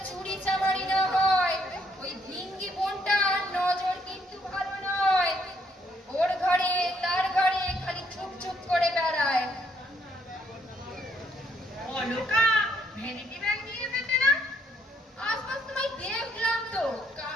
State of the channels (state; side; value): normal; both; correlation 0.70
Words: চুরি চামারি না হয়। ওই ভিঙ্গি বোনটার নজর কিন্তু ভালো নয়। ওর ঘরে তার ঘরে খালি চুপ চুপ করে বেড়ায়। অলকা ভ্যানিটি ব্যাগ নিয়ে এসেছে না? আশপাশ তোমায় দেখলাম তো,